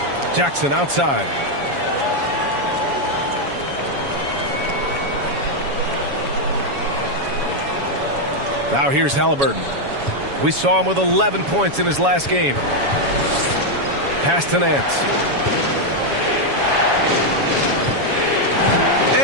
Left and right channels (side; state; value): left; late; 7.2 ms